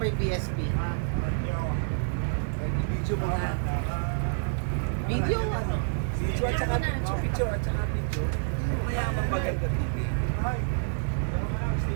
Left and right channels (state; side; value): silent; left; 59 dB below the other